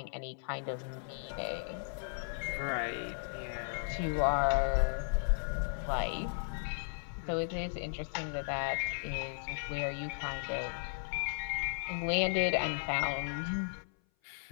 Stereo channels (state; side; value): silent; right; 54 dB below the other